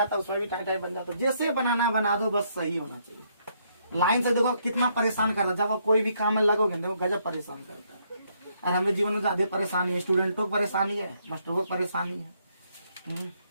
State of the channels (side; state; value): both; inverted; correlation -0.72